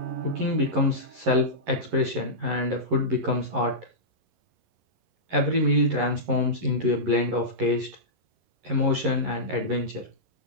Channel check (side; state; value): left; late; 11 ms